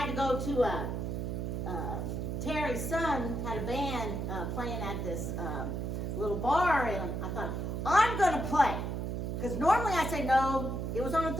to go to Terry's son had a band playing at this little bar, and I thought, I'm going to play. Because normally I say no. It was on a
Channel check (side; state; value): right; noise; hum, 2 dB below the sound